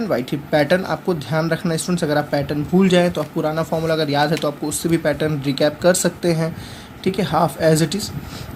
y3। Pattern आपको ध्यान रखना स्टूडेंट्स, अगर आप पैटर्न भूल जाएं तो आप पुराना फॉर्मूला अगर याद है तो आपको उससे भी पैटर्न रिकैप कर सकते हैं। ठीक है, हाफ एज इट इज़।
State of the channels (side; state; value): both; identical; correlation 1.00